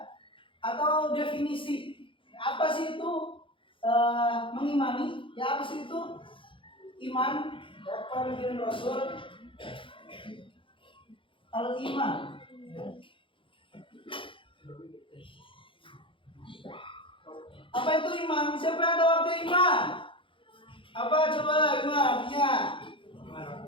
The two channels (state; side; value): late; right; 0.25 ms